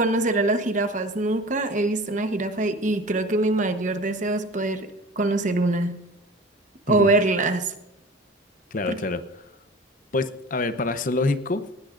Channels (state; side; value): normal; both; correlation 0.39